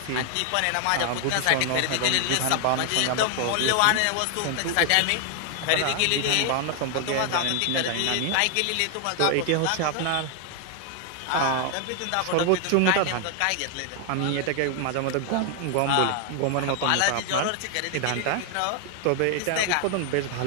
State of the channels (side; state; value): both; different; correlation 0.00